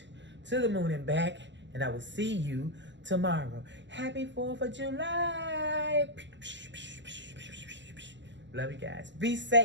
To the moon and back. And I will see you tomorrow. Happy 4th of July. Love you guys. Be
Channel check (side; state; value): left; late; 0.53 ms